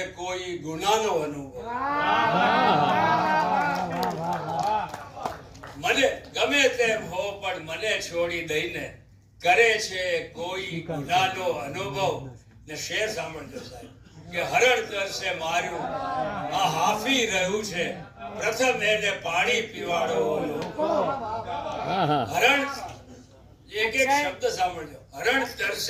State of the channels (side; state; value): both; identical; correlation 1.00